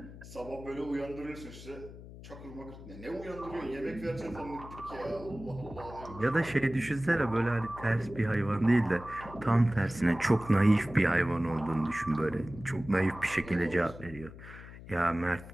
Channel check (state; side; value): noise; left; hum, 15 dB below the sound